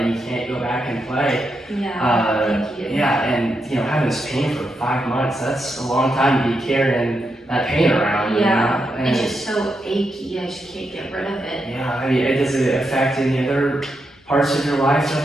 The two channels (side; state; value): both; normal; correlation 0.84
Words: you can't go back and play. Yeah, thank you. Yeah, and having this pain for 5 months, that's a long time to be carrying that pain around. Yeah, and it's just so achy, I just can't get rid of it. Yeah, I mean, does it affect any other parts of your life at